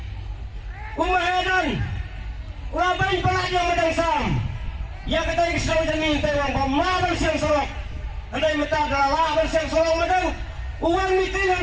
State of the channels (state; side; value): identical; both; correlation 1.00